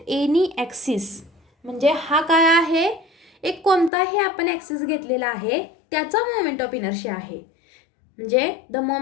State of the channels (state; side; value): drops out; right; at 3.9 s